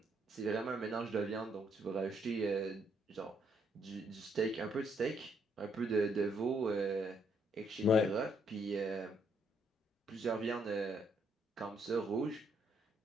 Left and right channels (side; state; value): both; normal; correlation 0.72